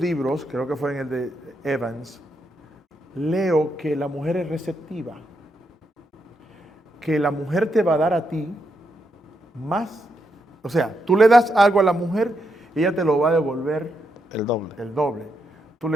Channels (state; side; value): normal; both; correlation 0.81